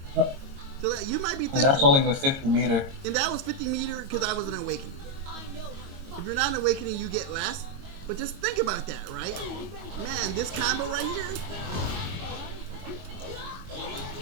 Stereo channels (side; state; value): left; late; 22 ms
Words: So that you might be thinking, And that's only with 50 meter. And that was 50 meter because I was an Awakening. If you're not an Awakening, you get less. But just think about that, right? Man, this combo right here.